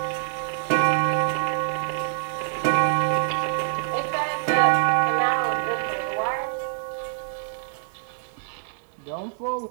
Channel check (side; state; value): left; silent; digital silence